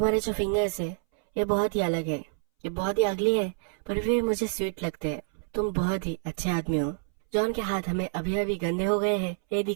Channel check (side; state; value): left; silent; 60 dB below the other